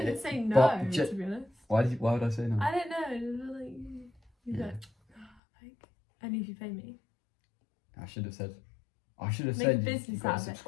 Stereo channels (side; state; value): right; drops out; at 5.3 s